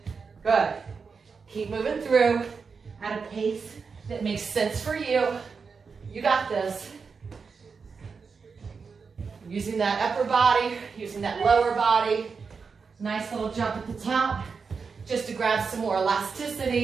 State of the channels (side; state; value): left; quieter; 5.3 dB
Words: Good. Keep moving through at a pace that makes sense for you. You got this. Using that upper body, using that lower body. Nice little jump at the top, just to grab some more